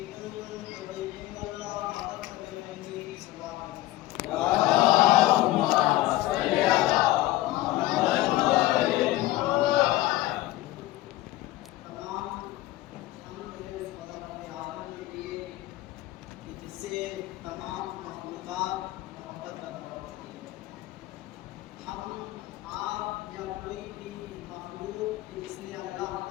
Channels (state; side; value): quieter; right; 16.7 dB